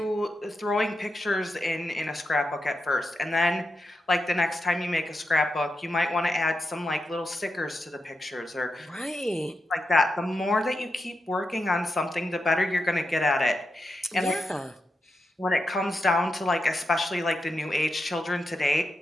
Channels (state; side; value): normal; both; correlation 0.87